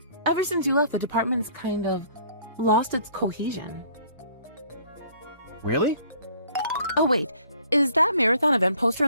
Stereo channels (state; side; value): inverted; both; correlation -0.57